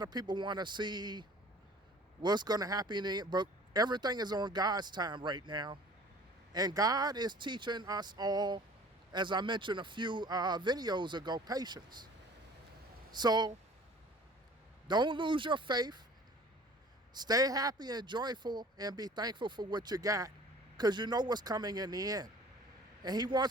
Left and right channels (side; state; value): both; normal; correlation 0.47